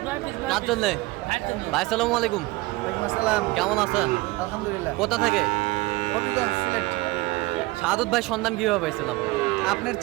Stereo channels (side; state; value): left; quieter; 21.3 dB